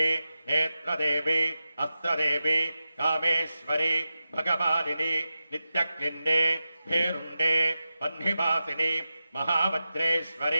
नेत्रदेवी अस्त्रदेवी कामेश्वरी भगवादिनी नित्यक्लिन्ने भेरुण्डे वह्निवासिनी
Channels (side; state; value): both; inverted; correlation -0.92